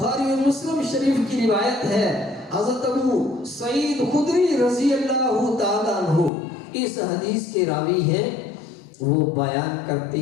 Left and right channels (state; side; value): drops out; right; at 6.3 s